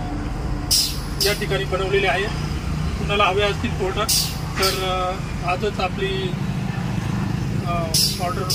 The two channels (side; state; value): both; identical; correlation 1.00